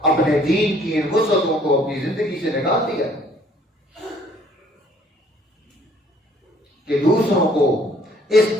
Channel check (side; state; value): both; normal; correlation 0.59